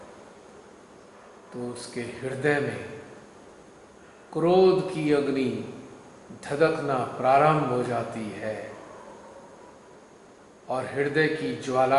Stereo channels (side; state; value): both; identical; correlation 1.00